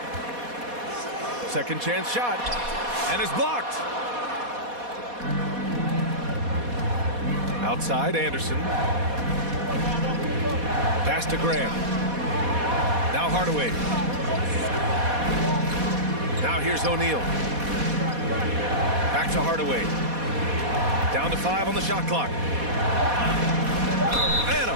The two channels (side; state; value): left; late; 4.2 ms